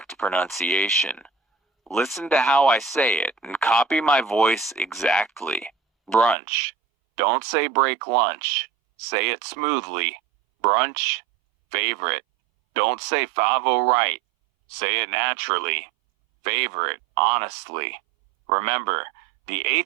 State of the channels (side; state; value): left; drops out; at 6.4 s